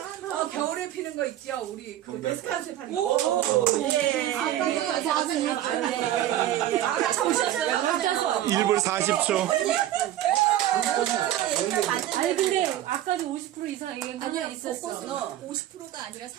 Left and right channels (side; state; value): left; quieter; 12.8 dB